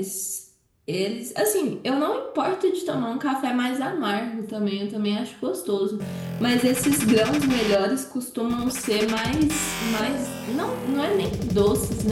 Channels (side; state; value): both; identical; correlation 1.00